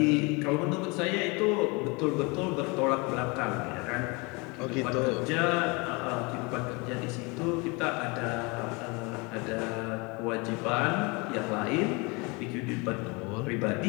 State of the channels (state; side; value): quieter; right; 28.2 dB